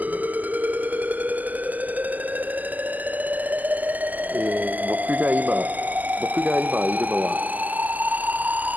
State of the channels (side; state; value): left; late; 0.081 ms